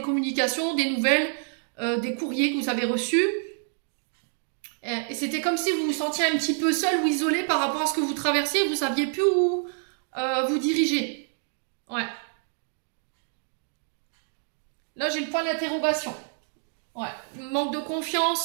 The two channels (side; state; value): left; silent; 60 dB below the other